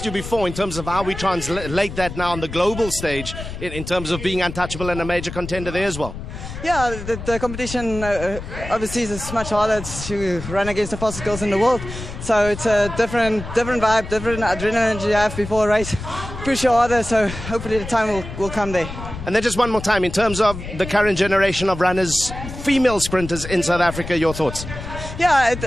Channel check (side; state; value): left; noise; rumble, 10 dB below the sound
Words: you before in terms of how we translate that now on the global stage in terms of being untouchable and a major contender there as well. Yeah, the competition overseas is much harder to run against the fastest girls in the world. So it's a different vibe, different adrenaline you have before a race. Push you harder, so hopefully the time will come there. And then just one more time, in terms of the current generation of runners, female sprinters in South Africa, your thoughts? Yeah,